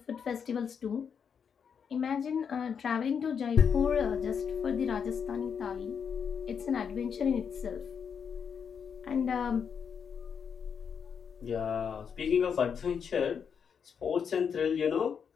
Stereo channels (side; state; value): right; quieter; 6.9 dB